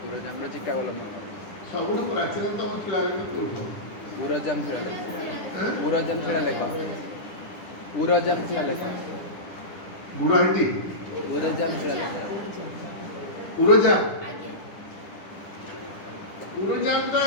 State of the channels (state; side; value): late; right; 10 ms